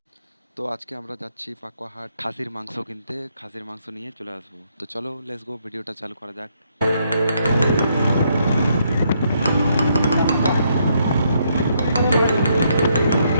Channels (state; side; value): inverted; both; correlation -0.73